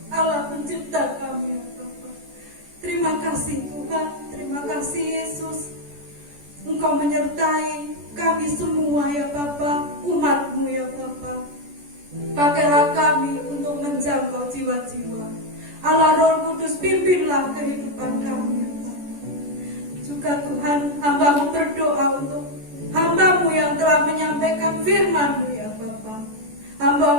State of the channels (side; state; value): left; late; 14 ms